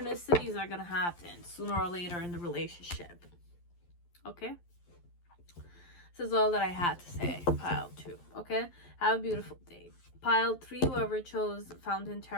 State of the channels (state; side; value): late; right; 11 ms